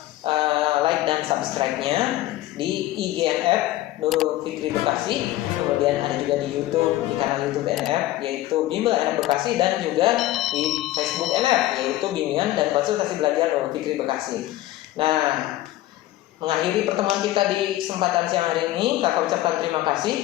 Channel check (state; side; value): quieter; right; 15.6 dB